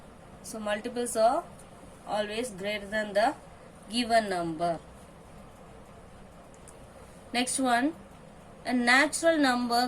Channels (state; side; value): identical; both; correlation 1.00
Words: So multiples are always greater than the given number. Next one, a natural